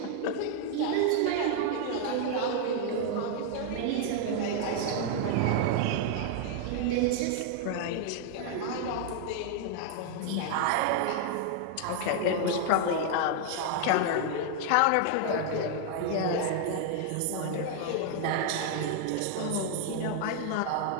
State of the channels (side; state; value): both; different; correlation 0.00